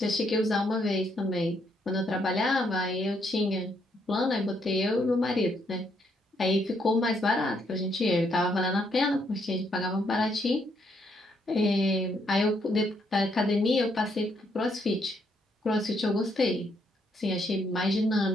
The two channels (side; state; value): both; normal; correlation 0.73